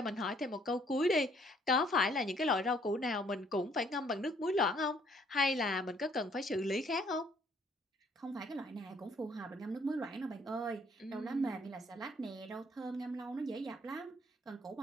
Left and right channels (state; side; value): normal; both; correlation 0.63